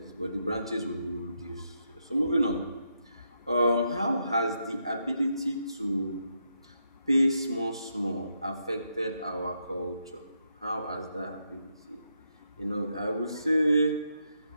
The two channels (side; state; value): both; inverted; correlation -0.81